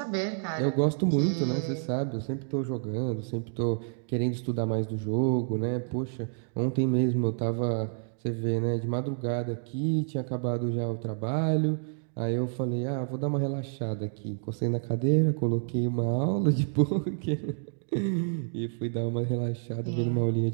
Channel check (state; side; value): silent; left; 59 dB below the other